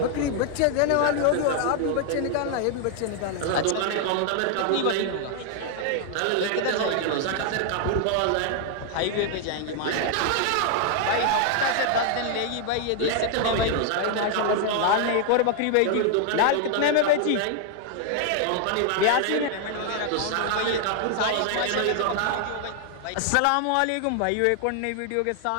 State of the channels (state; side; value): different; both; correlation 0.00